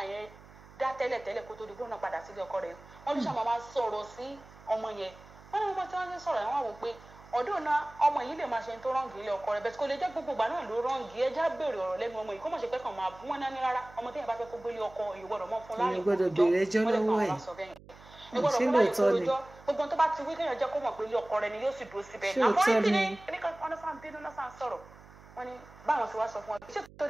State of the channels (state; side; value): noise; right; hum, 21 dB below the sound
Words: yẹn dá tẹ́lẹ̀ kó tó di gbóná padà sílé ọkọ rẹ̀ wọ́n ló ṣàmọ́ máa sọ̀rọ̀ sí ọmọ yẹn wọ́n ní wọ́n tí wọ́n ti sọ̀rọ̀ yẹn wọ́n wò pé ọdún náà ọmọ yìí lè máa ṣe tó rọ́ǹgì ilé ọkọ rẹ̀ bẹ́ẹ̀ kó lè jẹ́ gbogbo ìgbà náà ló rọ́ǹgì ẹja béèrè ọ̀rọ̀ lẹ́nu ọmọ yìí kó mọ̀ ṣe pé kàn máa bú wọn náà ní rárá ọmọ téèyàn bá fẹ́ kó gbélé ọkọ ìgbọ́dọ̀ mọ́ fún láàrin gbogbo tó bá ti wí kéèyàn jẹ́ kó mọ̀ pé ilé ọkọ rẹ̀ ni yóò sì dúró síbẹ̀ àmọ́ ní kíni kíníkan ọ̀nà sáà ń bínú náà sáà ń sọ̀rọ̀ wọ́n ní báwọn ti wá sọ fún wọn ṣé